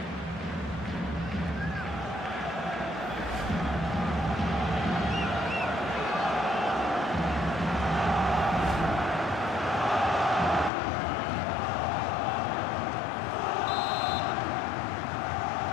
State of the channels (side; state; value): right; drops out; at 10.7 s